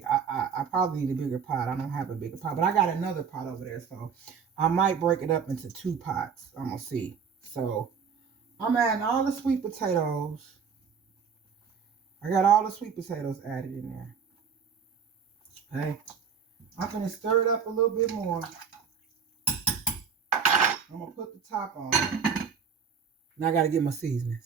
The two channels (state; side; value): quieter; left; 6.5 dB